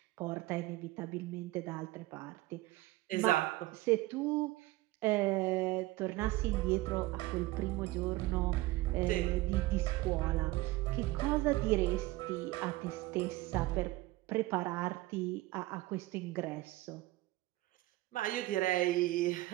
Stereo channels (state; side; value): quieter; left; 18.8 dB